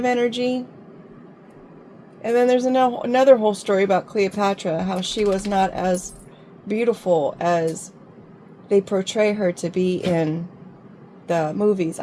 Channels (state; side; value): identical; both; correlation 1.00